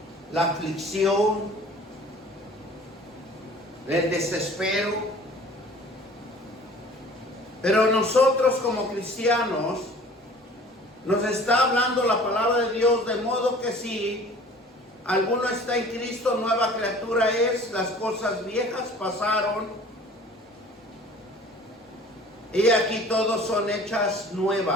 la aflicción, el desespero. Pero nosotros como cristianos, nos está hablando la palabra de Dios, de modo que si alguno está en Cristo, nueva criatura es, las cosas viejas pasaron, y aquí todos son hechas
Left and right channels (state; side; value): normal; both; correlation 0.48